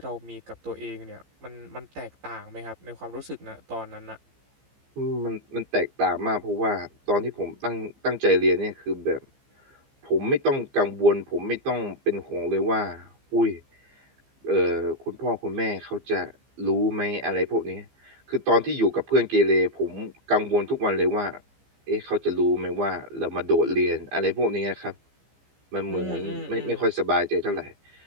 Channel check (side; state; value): left; late; 15 ms